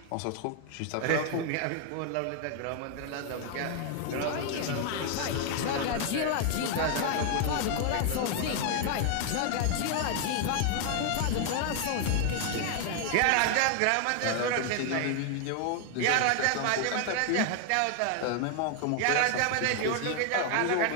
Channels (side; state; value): both; different; correlation 0.00